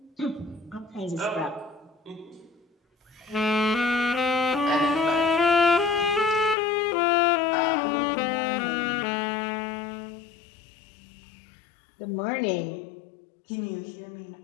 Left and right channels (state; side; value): drops out; right; at 6.6 s